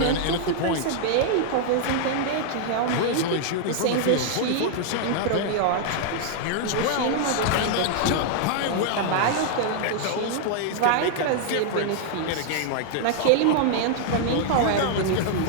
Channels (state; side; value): different; both; correlation 0.00